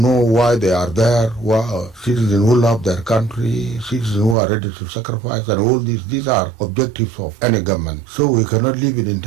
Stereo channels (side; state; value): left; drops out; at 4.4 s